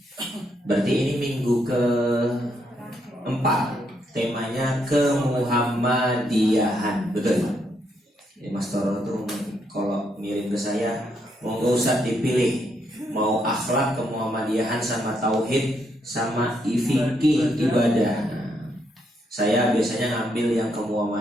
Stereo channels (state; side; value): normal; both; correlation 0.76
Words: berarti ini minggu ke-4. Temanya kemuhammadiyahan, betul? Jadi Mas Toro tuh kalau ngirim ke saya, monggo Ustaz dipilih mau akhlak kemuhammadiyahan sama tauhid sama fikih ibadah. Saya biasanya ngambil yang